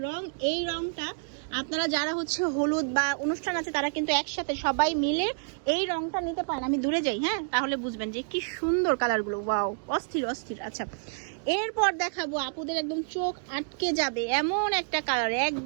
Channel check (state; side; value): silent; left; digital silence